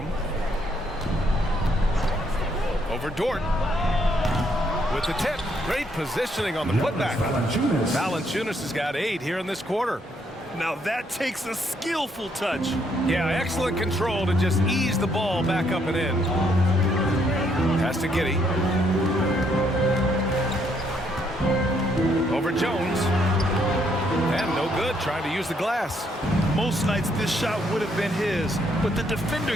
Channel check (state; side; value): normal; both; correlation 0.71